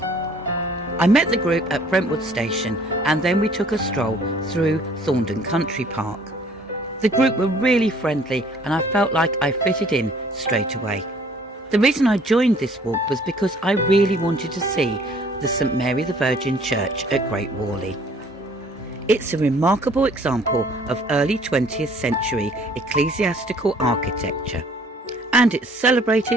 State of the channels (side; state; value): both; normal; correlation 0.57